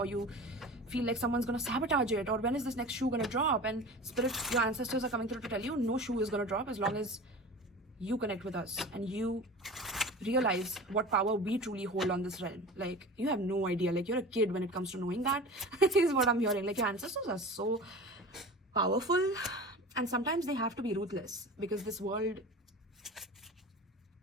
you feel like someone's gonna sabotage it, or when is this next shoe gonna drop? And spirit, your ancestors are coming through to tell you no shoe is gonna drop as long as you connect with us and you realize what power we truly hold on this realm. Like, you have no idea. Like, you're a kid when it comes to knowing that. Is what I'm hearing. Like, your ancestors are so powerful, And sometimes they have to be ruthless, because this world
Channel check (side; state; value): both; normal; correlation 0.35